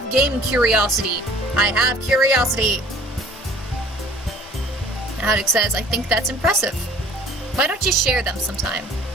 game curiosity. I have curiosity. Haddock says, I think that's impressive. Why don't you share them sometime?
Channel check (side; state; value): both; normal; correlation 0.51